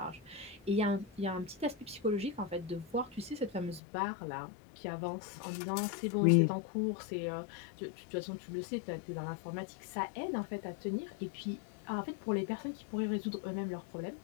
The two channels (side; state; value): right; drops out; at 3.8 s